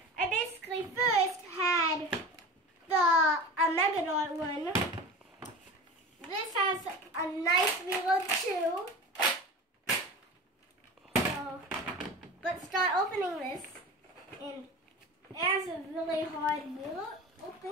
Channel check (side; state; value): both; normal; correlation 0.33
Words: I basically first had the Megadon one. This has a nice reload too. So let's start opening this, and it has a really hard reload